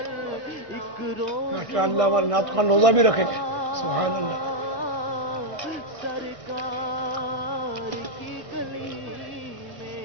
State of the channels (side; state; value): left; late; 1.6 ms